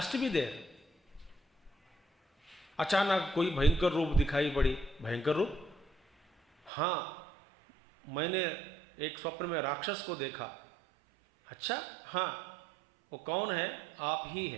to be there. अचानक कोई भयंकर रूप दिखाई पड़ी, भयंकर रूप, हाँ मैंने एक स्वप्न में राक्षस को देखा. अच्छा, हाँ वो कौन है? आप ही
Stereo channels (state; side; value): drops out; left; at 6.7 s